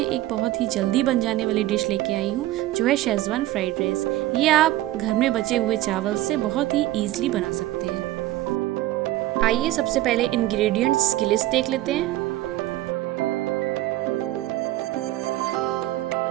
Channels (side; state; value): left; quieter; 15.7 dB